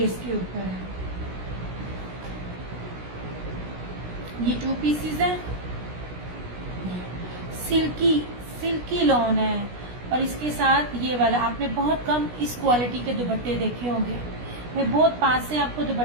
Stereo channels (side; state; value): left; late; 16 ms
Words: के ऊपर है। ये 2 पीसेस है, सिल्की सिल्की लॉन है और इसके साथ ये वाला आपने बहुत कम इस क्वालिटी के दुपट्टे देखे होंगे। मैं बहुत पास से आपको